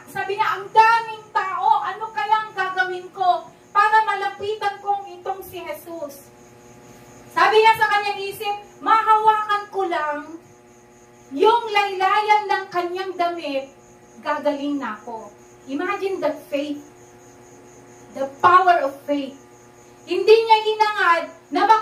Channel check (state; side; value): identical; both; correlation 1.00